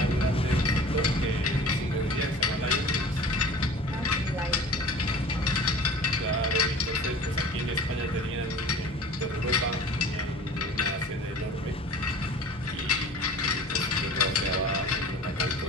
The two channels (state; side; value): normal; both; correlation 0.42